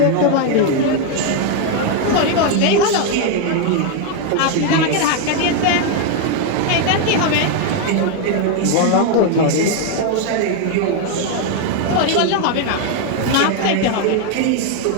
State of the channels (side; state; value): both; different; correlation 0.01